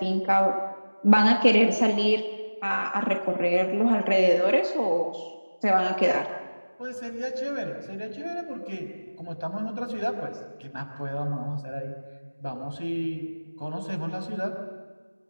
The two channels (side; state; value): both; inverted; correlation -1.00